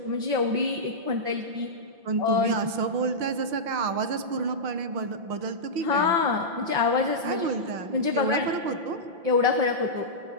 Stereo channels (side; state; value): left; late; 5.8 ms